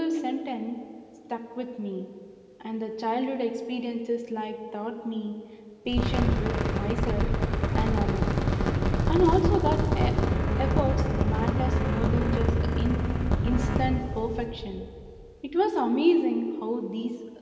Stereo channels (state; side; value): identical; both; correlation 1.00